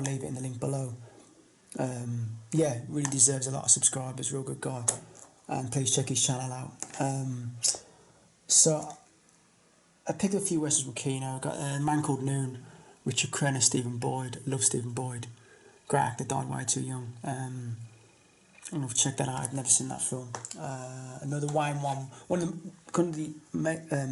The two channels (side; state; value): both; identical; correlation 1.00